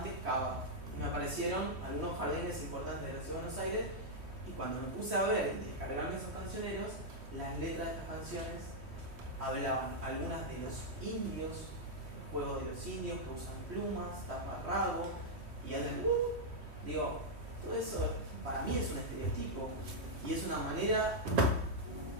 Cava, y me aparecieron algunos jardines importantes de la Ciudad de Buenos Aires, y cuando me puse a ver y descargarme esos cancioneros, las letras de estas canciones hablaban algunas de los indios, el juego de los indios que usan plumas, taparrabo y hablan, digo, todo eso para mí es un estereotipo y es una manera,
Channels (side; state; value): left; late; 3.1 ms